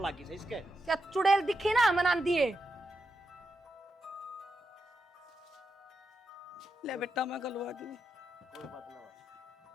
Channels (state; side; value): normal; both; correlation 0.86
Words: लगी से इसके। क्या चुड़ैल दिखी ना मनान दिए। ले बेटा मैं गलवा दी। कोई बात ना,